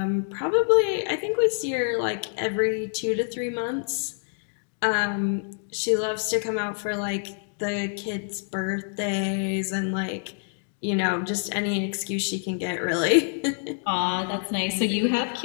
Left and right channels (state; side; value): silent; right; 61 dB below the other